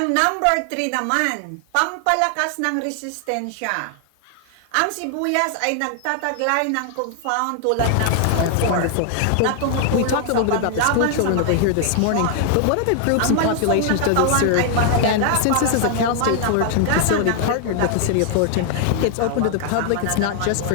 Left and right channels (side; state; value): both; different; correlation 0.00